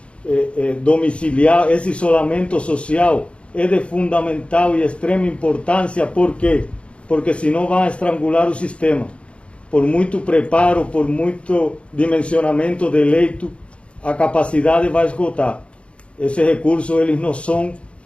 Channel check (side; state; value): right; late; 0.060 ms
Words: domiciliar, esse isolamento social, é de fundamental e extrema importância. Por quê? Porque senão vão estrangular o sistema. Por muito preparo, por muito dimensionamento de leito, a capacidade vai esgotar. Esses recursos, eles não são